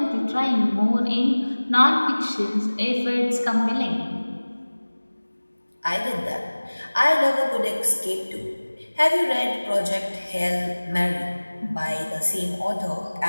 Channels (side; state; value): both; inverted; correlation -1.00